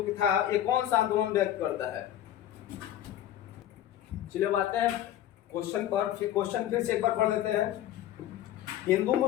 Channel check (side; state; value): right; quieter; 12.0 dB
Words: था ये कौन सा आंदोलन व्यक्त करता है? चलिए आते हैं क्वेश्चन पर, क्वेश्चन फिर से एक बार पढ़ लेते हैं। हिंदू